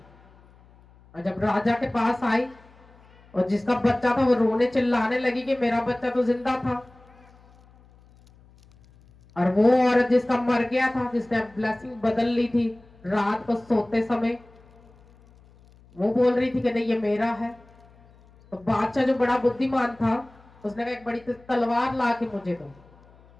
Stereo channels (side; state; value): left; noise; hum, 27 dB below the sound